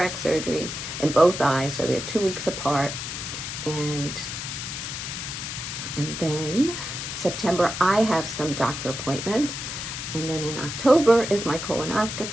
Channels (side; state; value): left; noise; hiss, 6 dB below the sound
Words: surgery in both eyes, so they're 2 weeks apart. And then September, I have some doctor appointments. And then in October is my